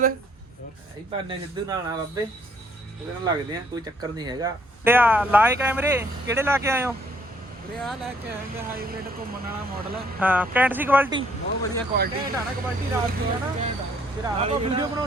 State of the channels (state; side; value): normal; both; correlation 0.65